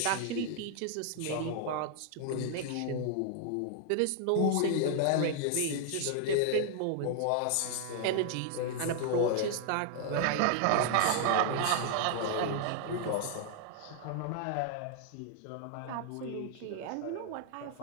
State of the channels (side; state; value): both; different; correlation 0.00